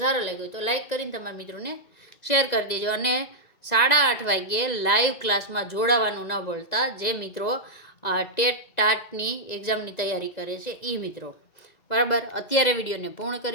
સારો લાગ્યો તો લાઈક કરીને તમારા મિત્રોને શેર કરી દેજો. અને 8:30 વાગ્યે લાઈવ ક્લાસમાં જોડાવાનું ન ભૂલતા, જે મિત્રો ટેટ ટાટની એક્ઝામની તૈયારી કરે છે એ મિત્રો, બરાબર. અત્યારે વિડીયોને પૂર્ણ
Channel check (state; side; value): late; right; 2.0 ms